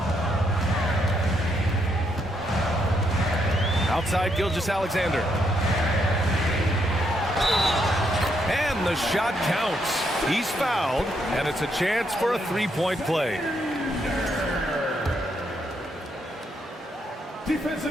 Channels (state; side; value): normal; both; correlation 0.76